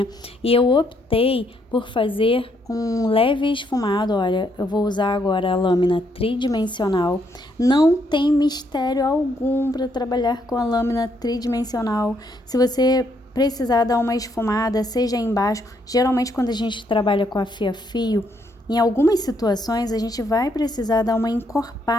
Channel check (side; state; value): both; normal; correlation 0.73